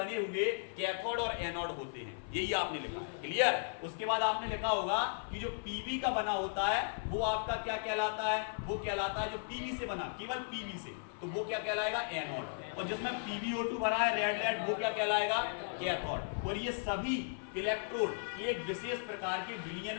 हुए कैथोड और एनोड होते हैं, यही आपने लिखा। क्लियर? उसके बाद आपने लिखा होगा कि जो पीवी का बना होता है वो आपका क्या कहलाता है, वो कहलाता है जो पीवी से बना, केवल पीवी से, तो वो क्या कहलाएगा, एनोड। और जिसमें PbO2 भरा है रेड रेड, वो क्या कहलाएगा, कैथोड। और ये सभी इलेक्ट्रोड एक विशेष प्रकार के विलयन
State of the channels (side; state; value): right; silent; 54 dB below the other